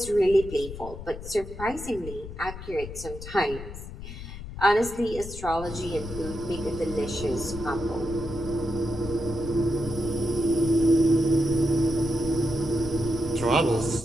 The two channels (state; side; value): noise; left; rumble, 11 dB below the sound